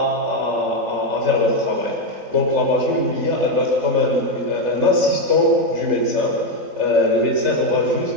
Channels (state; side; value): late; left; 3.3 ms